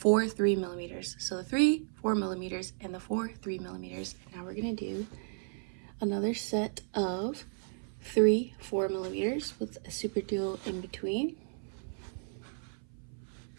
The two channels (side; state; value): left; silent; 55 dB below the other